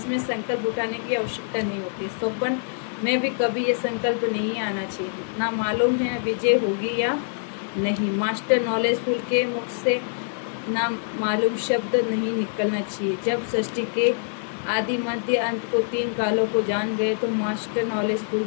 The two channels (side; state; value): right; silent; digital silence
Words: संकल्प उठाने की आवश्यकता नहीं होती। स्वप्न में भी कभी ये संकल्प नहीं आना चाहिए। ना मालूम है विजय होगी या नहीं। मास्टर नॉलेजफुल के मुख से ना मालूम शब्द नहीं निकलना चाहिए। जब सृष्टि के आदि मध्य अंत को 3 कालों को जान गए तो मास्टर नॉलेजफुल